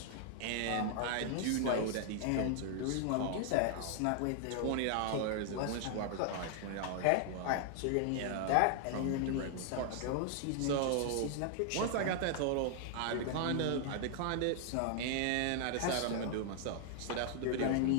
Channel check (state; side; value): different; both; correlation 0.00